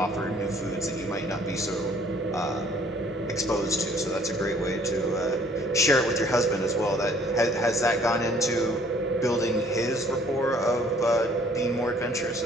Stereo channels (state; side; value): normal; both; correlation 0.58